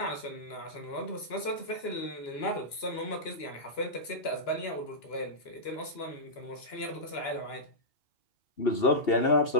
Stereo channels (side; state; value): right; late; 2.9 ms